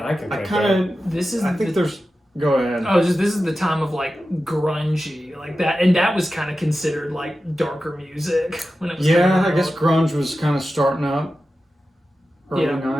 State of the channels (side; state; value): both; normal; correlation 0.93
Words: I can I think kind of. of. This is. I think the, there's. Go ahead. Oh, this is the time of like grungy, like that, and that was kind of considered like darker music when it was. Yeah, coming I guess out. grunge was kind of starting up. Early Yeah.